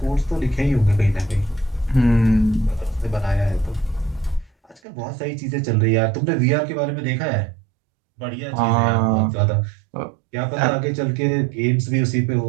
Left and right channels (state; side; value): drops out; left; at 4.8 s